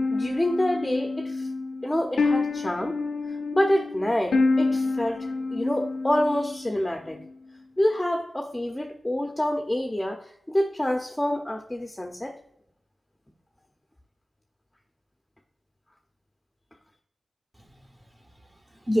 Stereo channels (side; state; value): both; normal; correlation 0.97